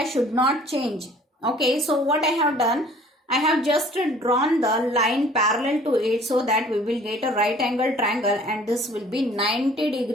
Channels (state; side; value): normal; both; correlation 0.52